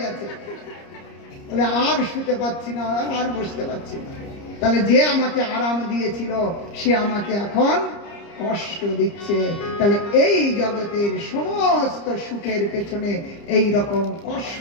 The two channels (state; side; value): late; right; 30 ms